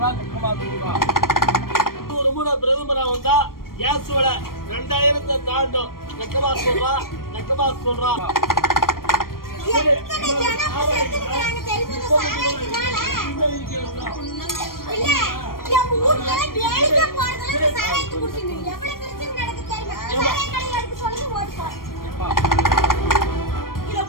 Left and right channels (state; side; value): late; right; 0.92 ms